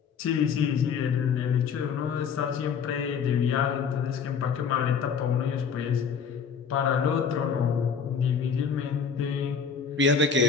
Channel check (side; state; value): right; quieter; 6.5 dB